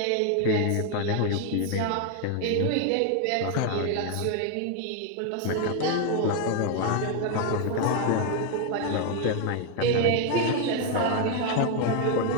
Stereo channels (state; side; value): different; both; correlation 0.01